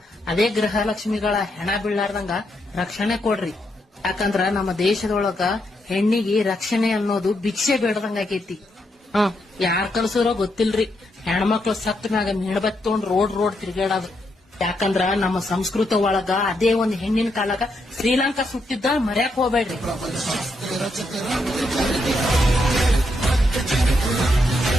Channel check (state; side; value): normal; both; correlation 0.80